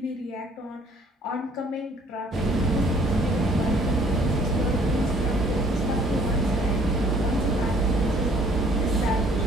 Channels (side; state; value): both; normal; correlation 0.59